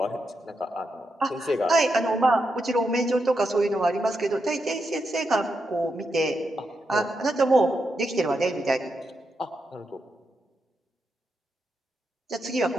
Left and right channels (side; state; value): both; normal; correlation 0.85